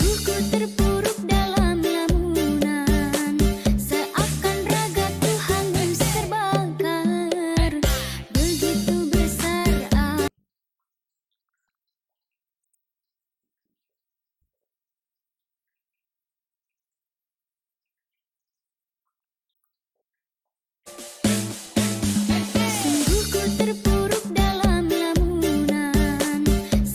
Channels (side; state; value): both; identical; correlation 1.00